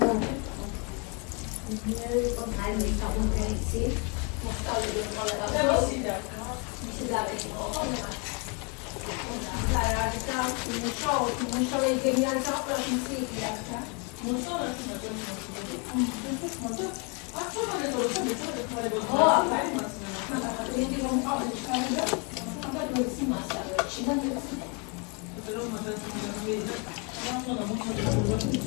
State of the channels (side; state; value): right; quieter; 34.0 dB